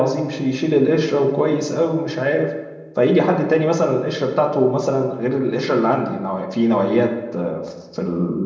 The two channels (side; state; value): both; identical; correlation 1.00